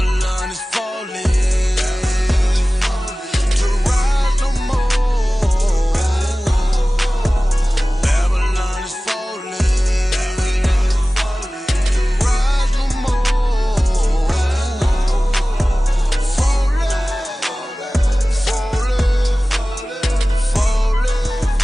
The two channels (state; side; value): normal; both; correlation 0.97